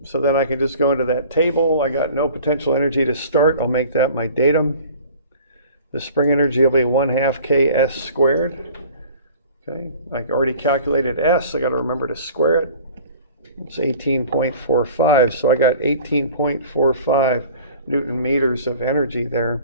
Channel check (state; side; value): inverted; both; correlation -0.46